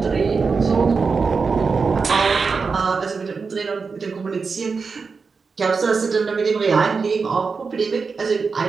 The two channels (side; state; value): left; quieter; 4.9 dB